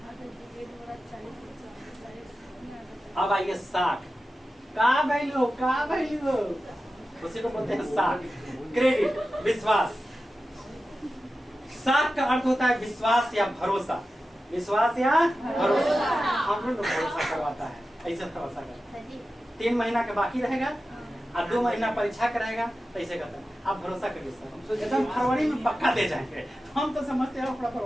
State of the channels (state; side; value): normal; both; correlation 0.93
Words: अब आइए साख का वैल्यू, उसी को बोलते हैं साख, क्रेडिट, विश्वास। साख का अर्थ होता है विश्वास या भरोसा, विश्वास या भरोसा। हम लोग भरोसा करवाता है, ऐसे भरोसा करता है 3 महीना के बाकी रहेगा और 2 महीना परीक्षा कराएगा, तो ऐसे करता है। आप भरोसा करिए सर, एकदम फरवरी में पक्का दे जाएंगे। हम तो समझते हैं अपना